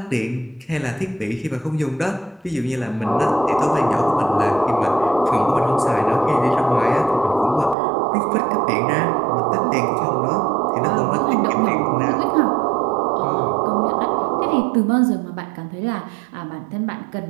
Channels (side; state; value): left; drops out; at 7.8 s